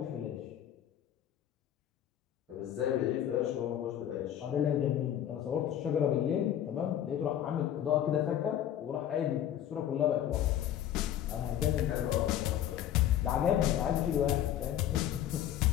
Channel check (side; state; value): right; quieter; 10.9 dB